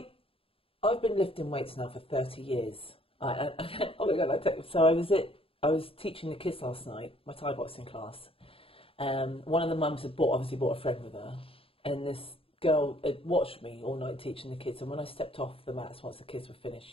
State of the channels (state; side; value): late; right; 0.27 ms